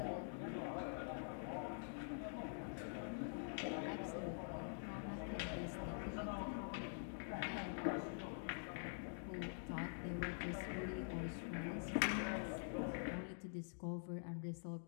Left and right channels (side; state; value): right; silent; digital silence